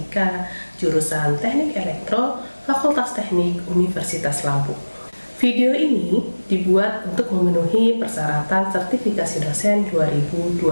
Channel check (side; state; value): both; inverted; correlation -1.00